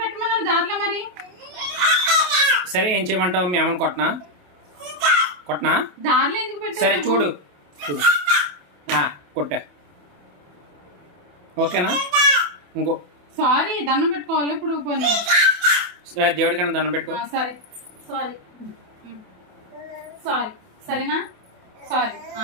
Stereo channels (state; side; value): late; left; 28 ms